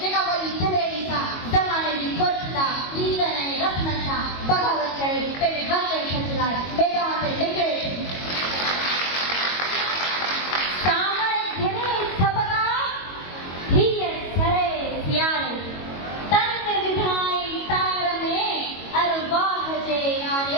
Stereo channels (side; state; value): right; late; 22 ms